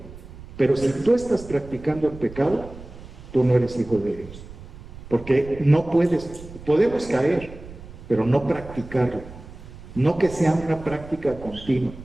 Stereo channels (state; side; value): noise; right; rumble, 16 dB below the sound